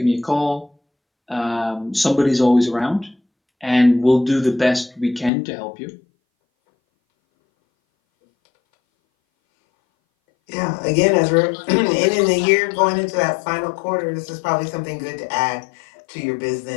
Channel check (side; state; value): right; drops out; at 5.3 s